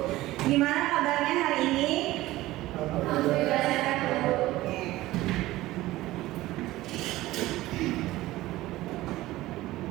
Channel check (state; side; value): quieter; left; 17.1 dB